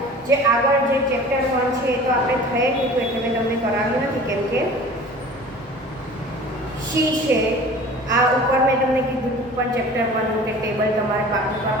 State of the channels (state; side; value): normal; both; correlation 0.43